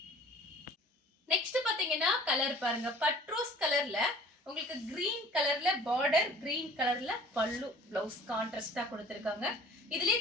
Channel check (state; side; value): normal; both; correlation 0.48